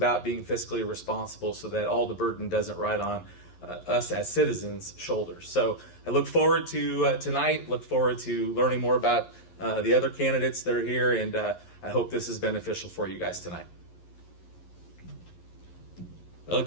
being fiscally responsible so that all the burden doesn't ride on us as citizens' shoulders. So I look forward to tonight, look forward to learning more about the other candidates that are here, and I hope this is beneficial for you guys tonight. Well,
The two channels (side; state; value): right; late; 11 ms